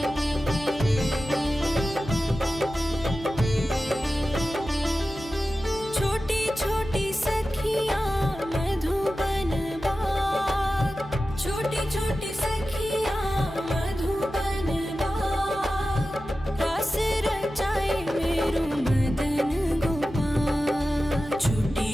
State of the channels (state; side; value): noise; left; hum, 16 dB below the sound